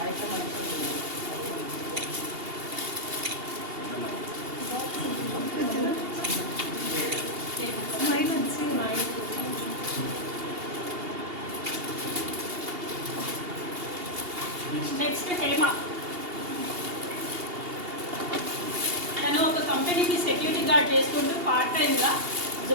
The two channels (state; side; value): late; left; 2.8 ms